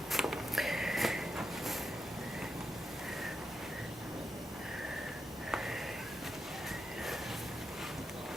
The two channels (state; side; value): normal; both; correlation 0.85